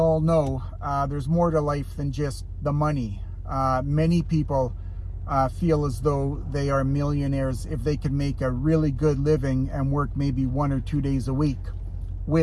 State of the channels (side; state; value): both; identical; correlation 1.00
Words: know, there's more to life than just the money. Many people feel as though they are millionaires if they can make a really good living and work maybe 1 or 2 days a week,